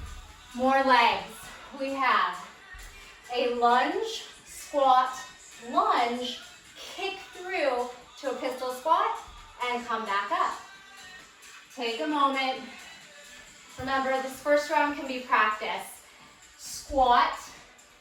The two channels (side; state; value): both; identical; correlation 1.00